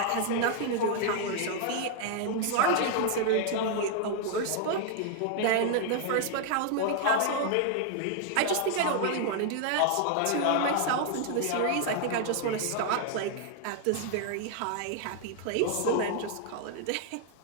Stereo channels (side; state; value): both; different; correlation 0.00